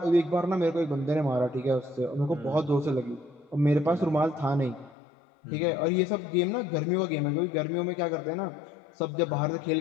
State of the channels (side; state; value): right; drops out; at 5.0 s